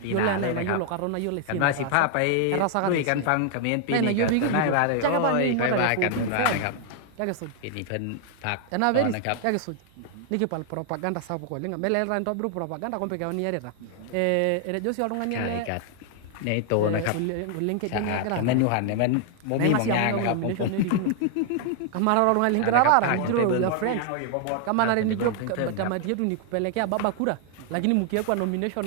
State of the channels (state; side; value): different; both; correlation 0.00